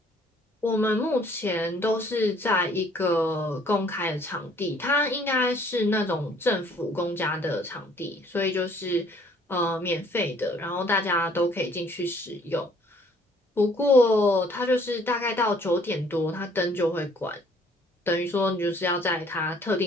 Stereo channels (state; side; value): normal; both; correlation 0.59